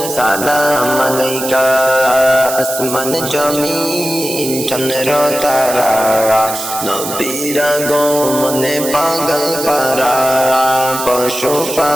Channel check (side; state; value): right; noise; hiss, 7 dB below the sound